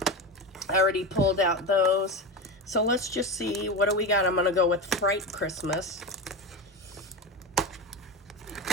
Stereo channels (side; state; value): both; normal; correlation 0.20